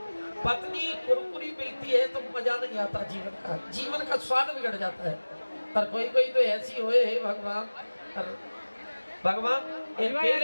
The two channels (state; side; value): inverted; both; correlation -1.00